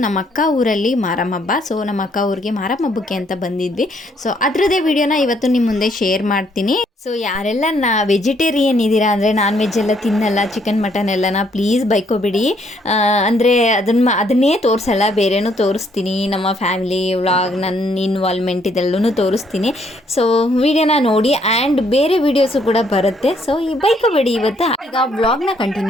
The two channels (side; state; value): both; normal; correlation 0.69